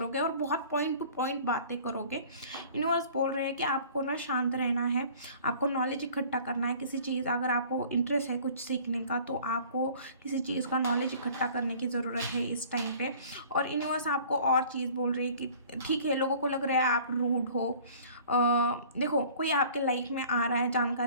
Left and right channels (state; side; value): inverted; both; correlation -0.49